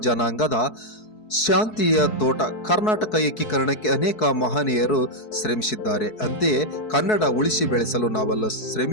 ಜನಾಂಗದ ಶಾಂತಿಯ ತೋಟ. ಕರ್ನಾಟಕ ಏಕೀಕರಣಕ್ಕೆ ಅನೇಕ ಮಹನೀಯರು ಶ್ರಮಿಸಿದ್ದಾರೆ. ಅಂತೆಯೇ ಕನ್ನಡ ಉಳಿಸಿ ಬೆಳೆಸಲು ನಾವೆಲ್ಲ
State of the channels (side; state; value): right; late; 4.6 ms